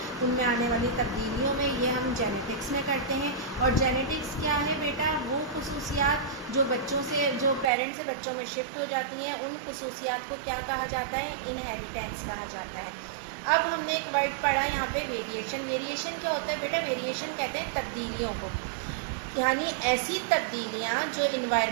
उनमें आने वाली तब्दीलियों में, ये हम जेनेटिक्स में करते हैं। और जेनेटिक्स क्या है बेटा, वो खुसूसियात जो बच्चों से, जो पेरेंट्स से बच्चों में शिफ्ट हो जाती हैं, उन खुसूसियात को क्या कहा जाता है, इनहेरिटेंस कहा जाता है। अब हमने एक वर्ड पढ़ा यहाँ पे वेरिएशन। वेरिएशन क्या होता है बेटा, वेरिएशन कहते हैं तब्दीलियों को, यानी ऐसी तब्दीलियाँ जो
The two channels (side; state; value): left; drops out; at 7.7 s